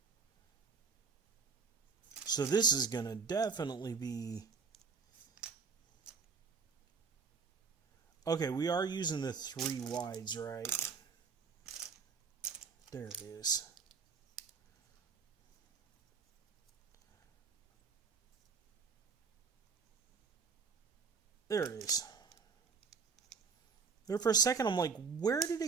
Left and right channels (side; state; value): left; quieter; 5.4 dB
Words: So this is going to definitely be... Okay, we are using the 3 wides, right? There it is. There it is. There for a second, I'm like, where did